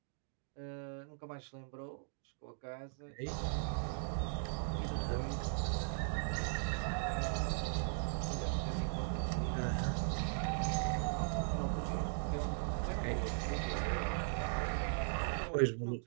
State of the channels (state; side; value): silent; left; digital silence